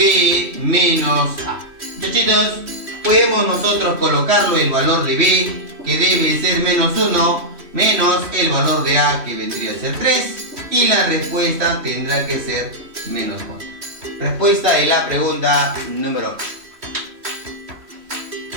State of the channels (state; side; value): late; left; 3.1 ms